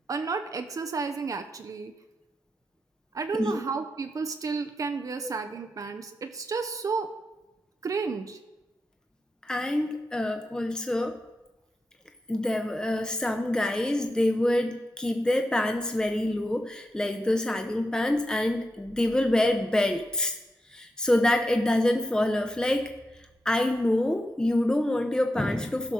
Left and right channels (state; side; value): normal; both; correlation 0.87